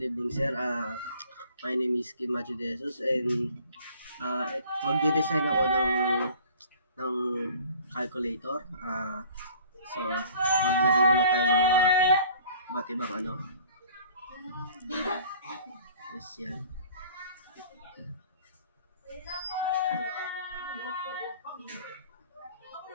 evening, sir. My name is Kim Macho De Jesus and magde-design ako ng calculator. So, maglagay muna tayo ng mga iba't ibang ano. Yes, yan.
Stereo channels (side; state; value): both; inverted; correlation -0.50